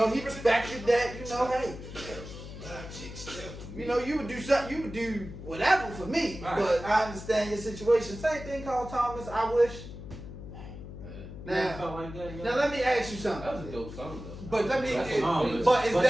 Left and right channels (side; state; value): left; noise; hum, 12 dB below the sound